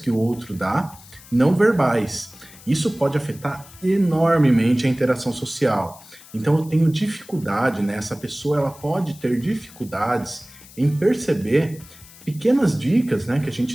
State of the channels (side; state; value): left; noise; hiss, 21 dB below the sound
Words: o outro dá, não verbais. Isso pode afetar enormemente a interação social. Então eu tenho dificuldade, né, essa pessoa ela pode ter dificuldades em perceber pequenas dicas, né, que a